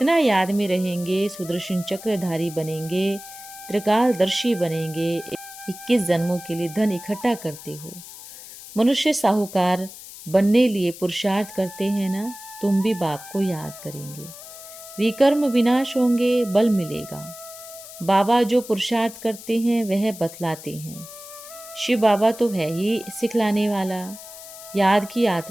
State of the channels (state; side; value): noise; left; hiss, 15 dB below the sound